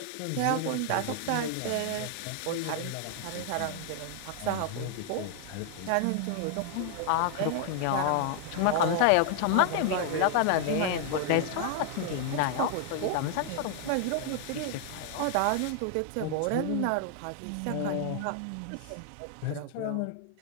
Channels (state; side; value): different; both; correlation 0.00